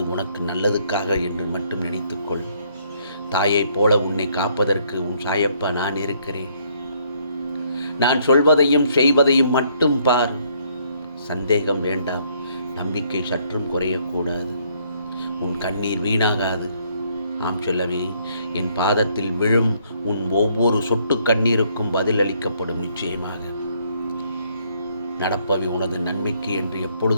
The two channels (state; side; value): inverted; both; correlation -0.68